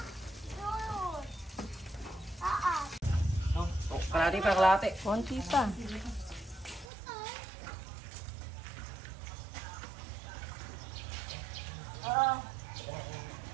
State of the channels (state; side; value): drops out; left; at 6.9 s